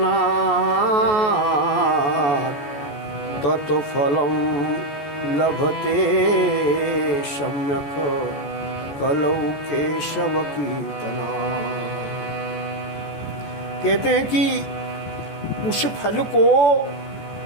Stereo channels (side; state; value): right; late; 14 ms